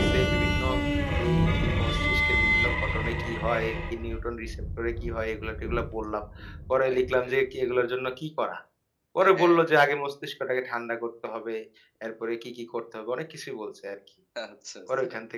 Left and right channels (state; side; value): identical; both; correlation 1.00